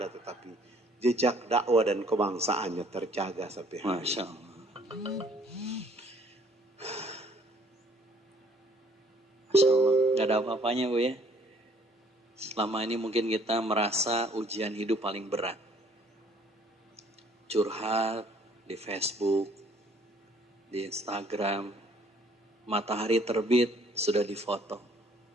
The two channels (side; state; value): both; normal; correlation 0.60